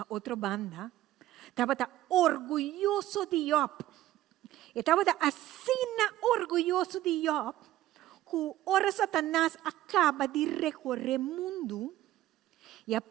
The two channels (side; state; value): left; quieter; 14.5 dB